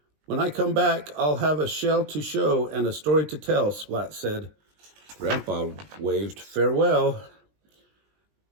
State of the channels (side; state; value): left; late; 20 ms